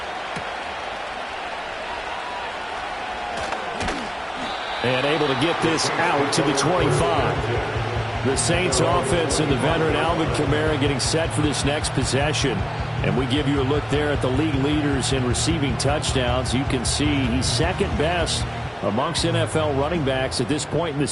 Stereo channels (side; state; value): both; identical; correlation 1.00